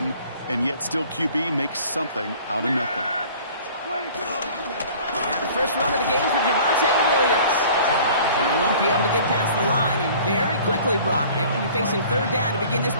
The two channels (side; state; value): both; inverted; correlation -0.49